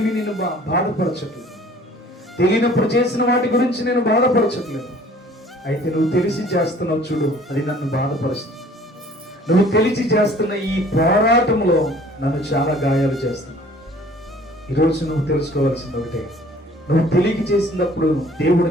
నిన్ను బాధపరచట్లేదు. తెలియనప్పుడు చేసిన వాటి గురించి నేను బాధపరచట్లేదు. అయితే నువ్వు తెలిసి చేస్తున్నావు చూడు, అది నన్ను బాధపరుస్తుంది. నువ్వు తెలిసి చేస్తున్న ఈ పోరాటంలో నన్ను చాలా గాయాలు చేస్తున్నావు. ఈరోజు నువ్వు తెలుసుకోవాల్సింది ఒకటే, నువ్వు తెలియక చేసినప్పుడు దేవుడు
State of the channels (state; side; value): normal; both; correlation 0.52